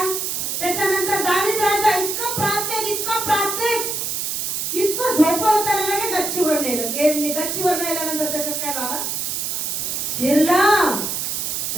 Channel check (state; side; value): noise; right; hiss, 2 dB below the sound